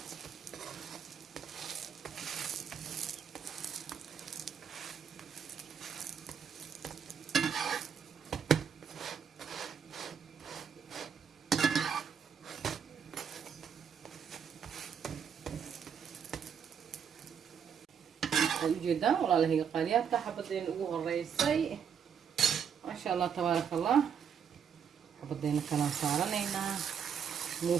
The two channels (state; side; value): quieter; left; 7.5 dB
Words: جدا والله هي قاليات حبتين ugu horeysay ما شاء الله تبارك الله حبتين كلام سارنينا